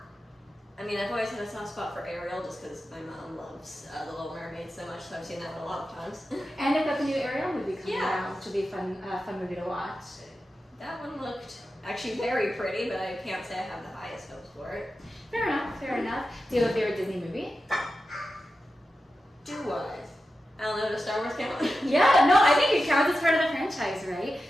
I mean, I've always had a soft spot for Ariel just because my mom loves The Little Mermaid so much, so I've seen that one a lot of times. And they've got the new Ariel movie coming out, which will be a fun movie to watch. That one looked actually very pretty, but I can't say I have the highest hopes for it. Fair enough, fair enough. Do you have a favorite Disney movie? Do I? I don't know, does Star Wars count? Yeah, no, I think it counts as part of the franchise, right?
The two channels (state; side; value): normal; both; correlation 0.91